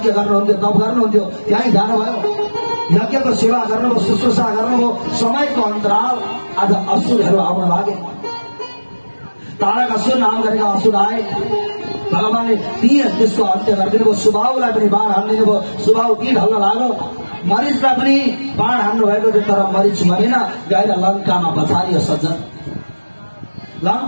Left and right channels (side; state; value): both; inverted; correlation -1.00